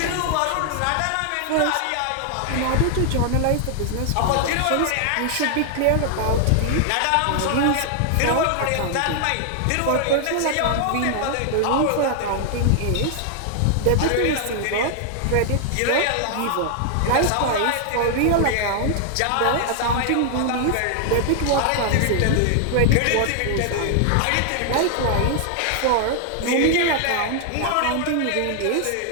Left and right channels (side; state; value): both; different; correlation 0.00